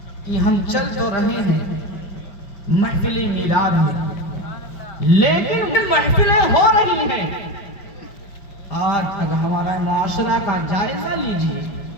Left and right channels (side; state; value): right; late; 5.0 ms